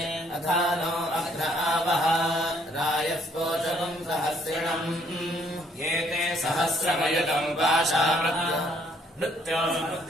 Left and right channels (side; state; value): both; normal; correlation 0.65